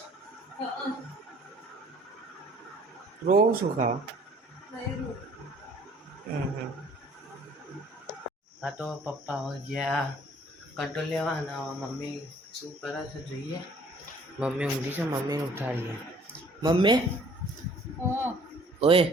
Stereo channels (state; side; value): normal; both; correlation 0.55